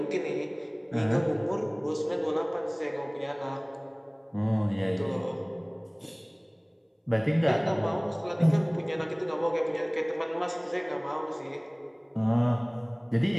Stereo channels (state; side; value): identical; both; correlation 1.00